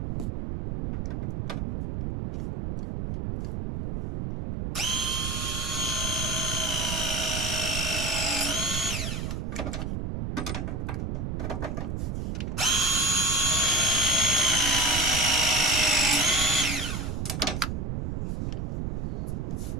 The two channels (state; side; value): noise; right; rumble, 2 dB below the sound